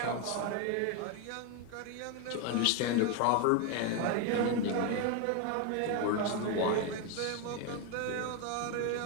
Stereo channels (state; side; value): different; both; correlation 0.01